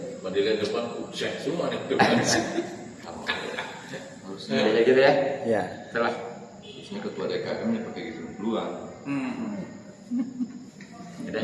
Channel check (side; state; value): both; identical; correlation 1.00